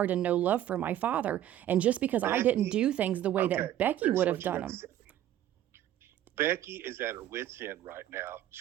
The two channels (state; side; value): quieter; left; 12.3 dB